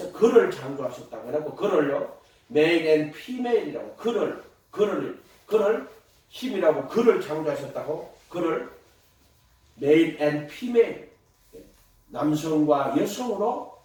그를 창조하셨다고 해놓고 그를요 male and female이라고 그를 힘이라고 그를 창조하셨다고 그를 male and female 남성과 여성으로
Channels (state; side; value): identical; both; correlation 1.00